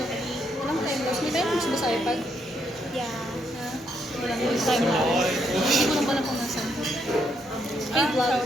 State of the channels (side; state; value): both; normal; correlation 0.75